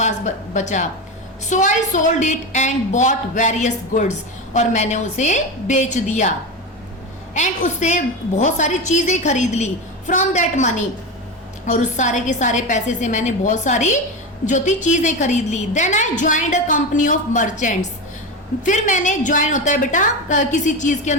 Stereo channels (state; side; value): normal; both; correlation 0.20